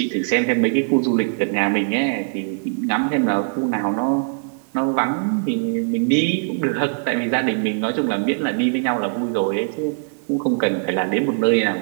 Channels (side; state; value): left; silent; digital silence